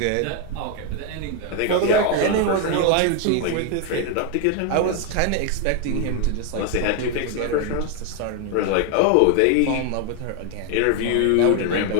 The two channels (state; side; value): different; both; correlation 0.01